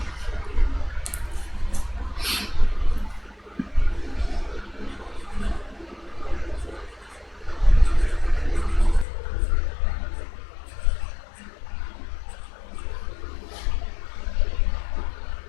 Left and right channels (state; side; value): drops out; right; at 9.1 s